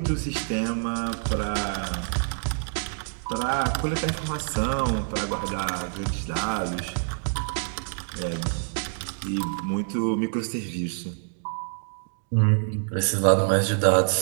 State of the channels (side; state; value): left; silent; digital silence